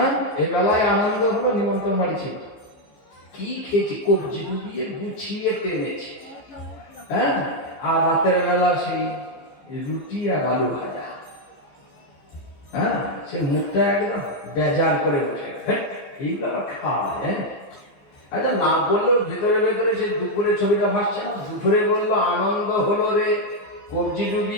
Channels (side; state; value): right; late; 15 ms